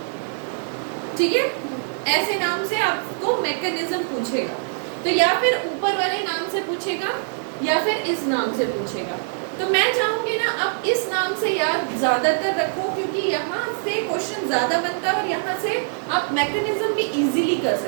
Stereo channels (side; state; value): left; silent; digital silence